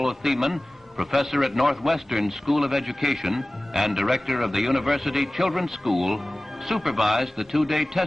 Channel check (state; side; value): normal; both; correlation 0.98